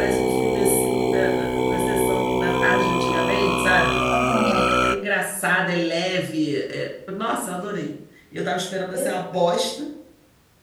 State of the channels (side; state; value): both; identical; correlation 1.00